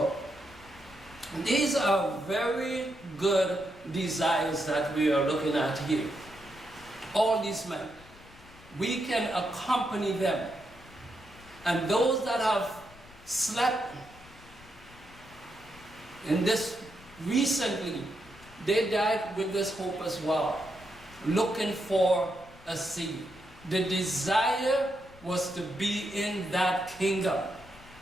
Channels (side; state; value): left; noise; rumble, 22 dB below the sound